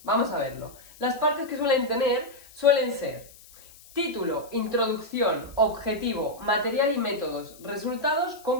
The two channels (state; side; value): noise; left; hiss, 22 dB below the sound